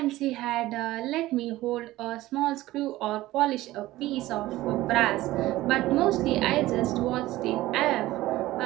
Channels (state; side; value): quieter; left; 16.9 dB